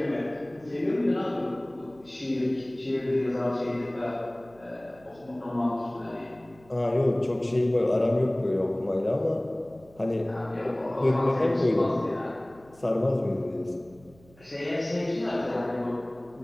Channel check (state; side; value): noise; right; hum, 26 dB below the sound